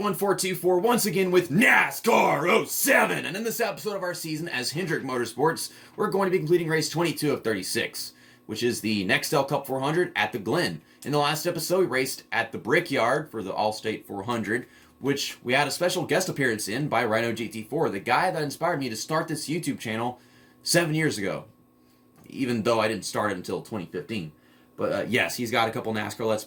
once again with NASCAR 07, and in this episode of our season as Hendrick Motorsports, we're going to be completing race 22 of 36, which is the Nextel Cup 400 at the Glen. In the last episode, we raced at the Brickyard for the All-State 400, which we had a special guest appearance in by Rhino GT4, the guy that inspired me to start this YouTube channel 7 years ago, even though I didn't start it until 2015. But yes, he's got a couple NASCAR Let's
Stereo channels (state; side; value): identical; both; correlation 1.00